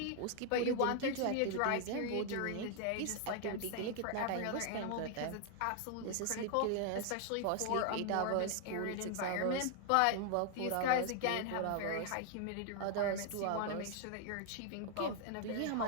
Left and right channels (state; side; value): different; both; correlation 0.00